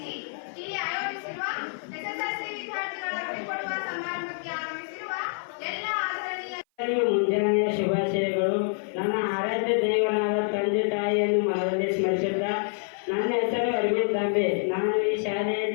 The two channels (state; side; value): silent; right; 56 dB below the other